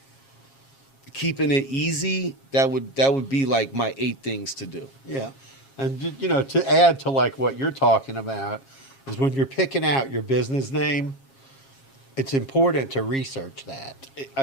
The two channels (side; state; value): right; late; 7.4 ms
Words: keeping it easy, that would be like my 8 things to do. Yeah. And, to add to like what you're talking about is when you're picking out your business name, it's important to research that.